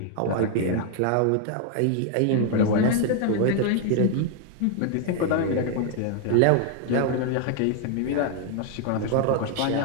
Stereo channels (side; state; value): both; different; correlation 0.00